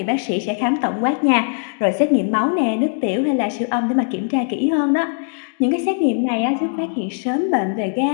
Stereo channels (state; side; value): silent; right; 66 dB below the other